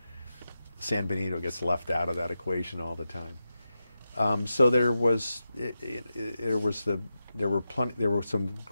San Benito gets left out of that equation all the time. So there were some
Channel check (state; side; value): inverted; both; correlation -0.90